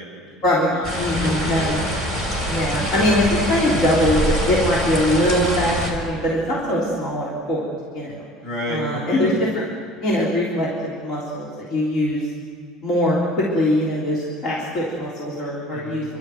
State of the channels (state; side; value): normal; both; correlation 0.48